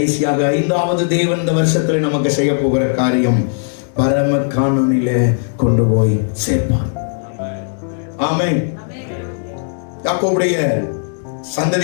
5வது தேவன் இந்த வருஷத்துல நமக்கு செய்ய போகிற காரியம், பரம கானானிலே கொண்டு போய் சேர்ப்பார். ஆமென். யாக்கோபுடைய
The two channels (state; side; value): silent; right; digital silence